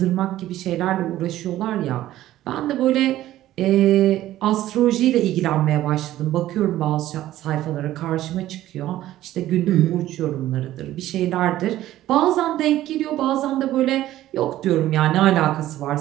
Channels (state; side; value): quieter; left; 14.2 dB